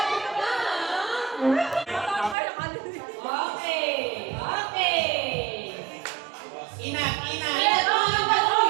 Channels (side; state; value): left; drops out; at 2.4 s